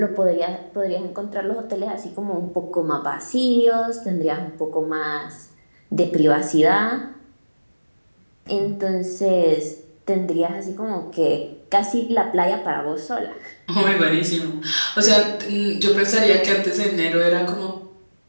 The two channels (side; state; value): both; inverted; correlation -1.00